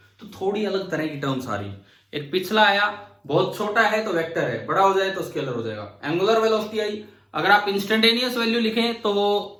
तो थोड़ी अलग तरह की टर्म्स आ रही। एक पिछला आया, बहुत छोटा है तो वेक्टर है, बड़ा हो जाए तो स्केलर हो जाएगा। एंगुलर वेलोसिटी आई, अगर आप इंस्टेंटेनियस वैल्यू लिखें तो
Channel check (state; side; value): identical; both; correlation 1.00